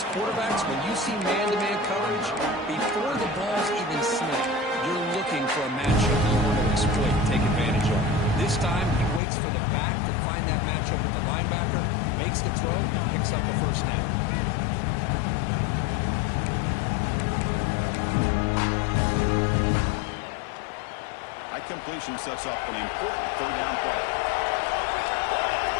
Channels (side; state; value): right; drops out; at 9.2 s